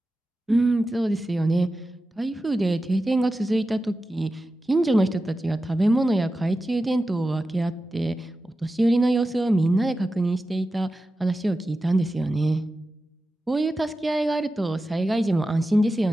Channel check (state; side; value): normal; both; correlation 0.93